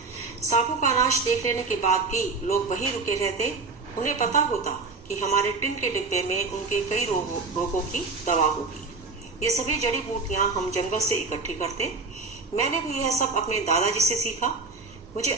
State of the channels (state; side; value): quieter; left; 4.0 dB